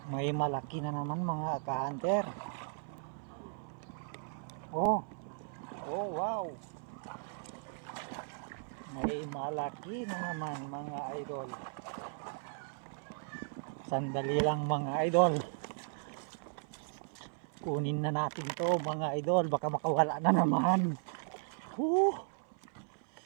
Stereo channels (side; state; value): left; silent; 54 dB below the other